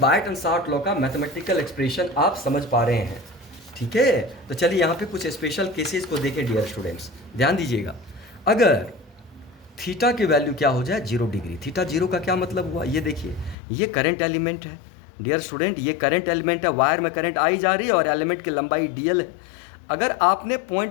शार्ट लॉ का मैथमेटिकल एक्सप्रेशन आप समझ पा रहे हैं, ठीक है? तो चलिए यहाँ पे कुछ स्पेशल केसेस को देखें डियर स्टूडेंट्स, ध्यान दीजिएगा। अगर थीटा की वैल्यू क्या हो जाए? 0 डिग्री। थीटा 0 का क्या मतलब हुआ? ये देखिए, ये करंट एलिमेंट है डियर स्टूडेंट, ये करंट एलिमेंट है, वायर में करंट आई जा रही है और एलिमेंट की लंबाई डीएल है। अगर आपने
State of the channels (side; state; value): right; drops out; at 13.6 s